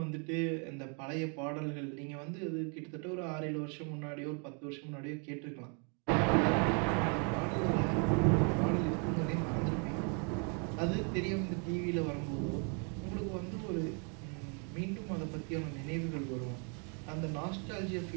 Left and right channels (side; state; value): left; quieter; 38.3 dB